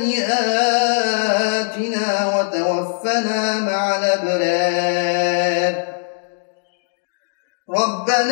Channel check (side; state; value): right; silent; digital silence